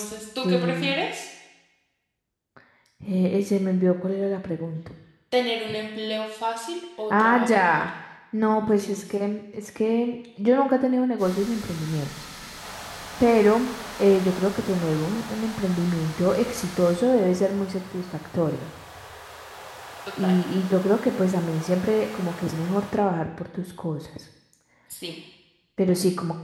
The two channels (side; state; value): both; identical; correlation 1.00